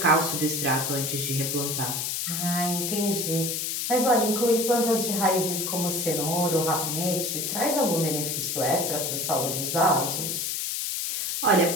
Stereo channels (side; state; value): left; noise; hiss, 1 dB below the sound